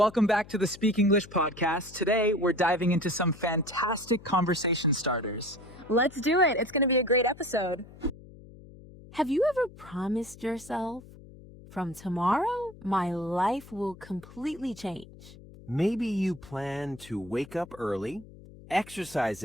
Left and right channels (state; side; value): noise; left; hum, 19 dB below the sound